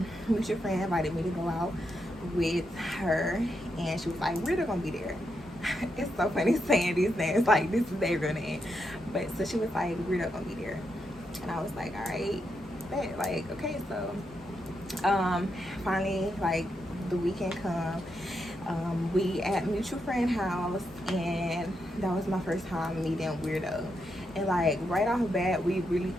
mutual friend invited me to go out with her, and she was like, we're gonna be there. It's so funny saying these names, like this is their real name. But so she was like, we're not gonna be there. And I was like, all right, bet. Like, okay. So finally, like, the weekend come, we at mutual friend house, and that was my first time meeting Weirdo. And like right off the bat, we really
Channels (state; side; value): normal; both; correlation 0.83